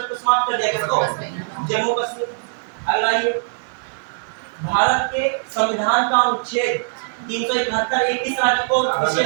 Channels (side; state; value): left; silent; digital silence